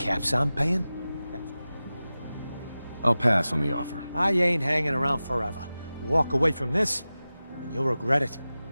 I'm paying, I'll pass on the offer. I ain't hanging around forever. Walk away from this, and you'll regret it.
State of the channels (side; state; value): both; inverted; correlation -0.96